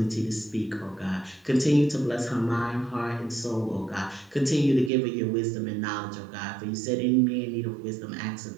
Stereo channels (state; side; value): drops out; left; at 4.9 s